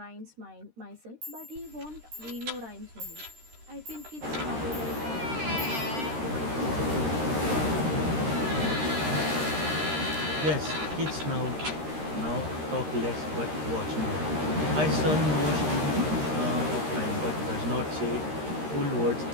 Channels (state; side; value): late; left; 13 ms